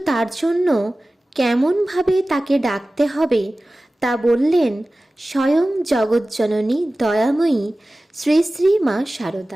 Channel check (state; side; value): normal; both; correlation 0.97